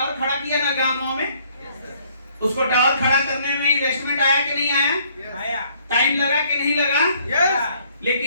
खड़ा किया ना गांव में, उसको टावर खड़ा करने में इन्वेस्टमेंट आया कि नहीं आया? टाइम लगा कि नहीं लगा?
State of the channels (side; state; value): both; inverted; correlation -0.63